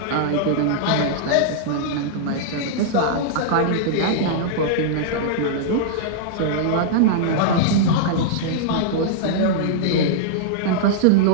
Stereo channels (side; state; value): both; different; correlation -0.02